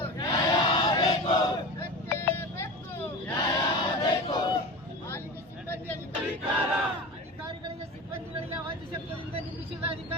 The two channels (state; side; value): normal; both; correlation 0.30